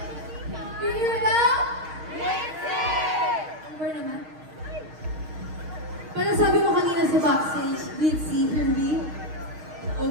we go. Glitzy! Amber naman. Parang sabi mo kanina sa backstage, glitzy, here we go,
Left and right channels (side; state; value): left; late; 6.4 ms